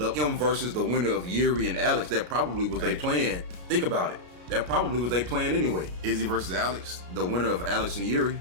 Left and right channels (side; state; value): left; late; 33 ms